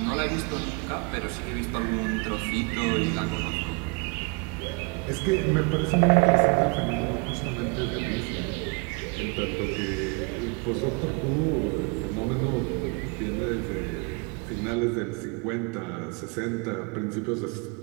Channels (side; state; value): left; quieter; 31.3 dB